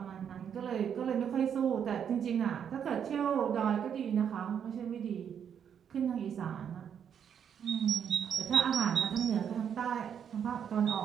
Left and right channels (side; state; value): left; quieter; 8.2 dB